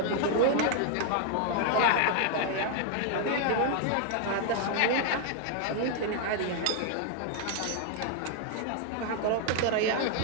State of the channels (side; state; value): both; different; correlation 0.00